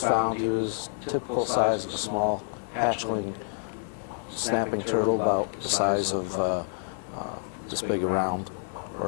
found, he was typical size of a small hatchling snapping turtle, about the size of this big around,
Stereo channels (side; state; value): right; silent; 59 dB below the other